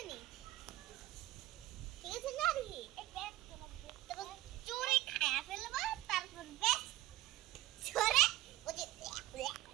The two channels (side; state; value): left; quieter; 16.3 dB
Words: নি? ঠিক আছে না রে? তারপর চোরে খায়া ফেলবো তারপর বেশ চোরে ওই যে